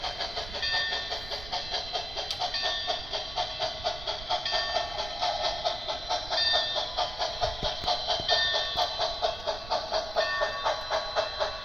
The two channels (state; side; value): noise; right; rumble, 12 dB below the sound